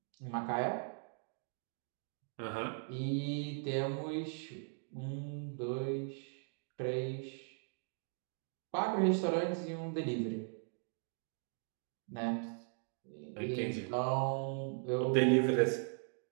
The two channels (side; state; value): left; silent; 52 dB below the other